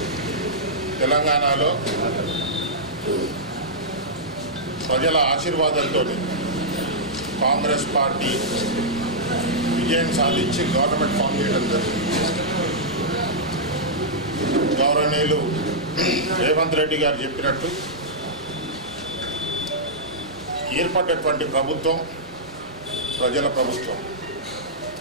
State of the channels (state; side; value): normal; both; correlation -0.11